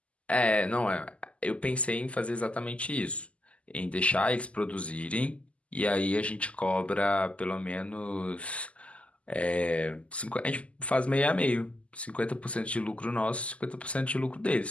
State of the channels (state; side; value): late; right; 0.061 ms